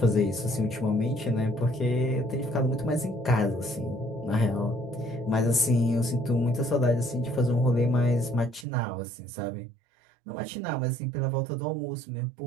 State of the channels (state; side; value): drops out; left; at 8.7 s